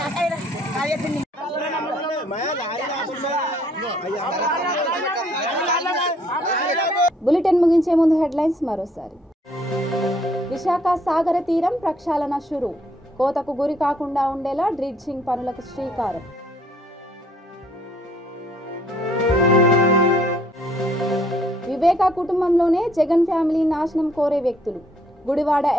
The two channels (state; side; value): normal; both; correlation 0.64